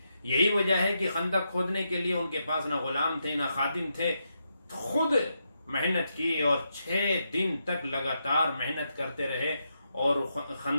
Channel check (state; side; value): inverted; both; correlation -0.83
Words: یہی وجہ ہے کہ خندق کھودنے کے لیے ان کے پاس نہ غلام تھے نہ خادم تھے. خود محنت کی اور 6 دن تک لگاتار محنت کرتے رہے اور